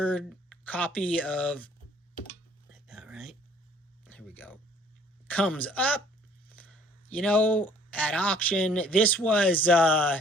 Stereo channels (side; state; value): both; normal; correlation 0.57